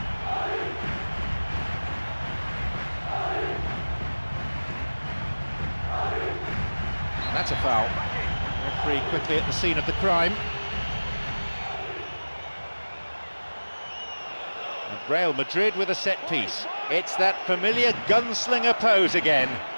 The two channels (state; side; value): inverted; both; correlation -1.00